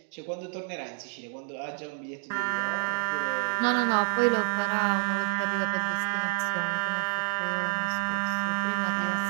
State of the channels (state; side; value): silent; left; 59 dB below the other